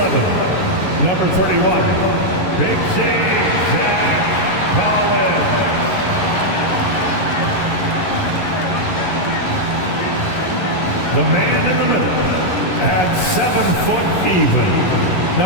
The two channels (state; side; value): late; right; 11 ms